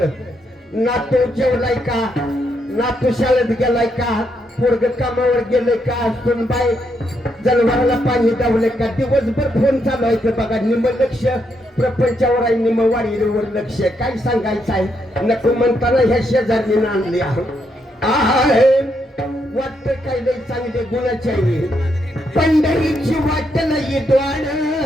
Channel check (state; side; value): normal; both; correlation 0.78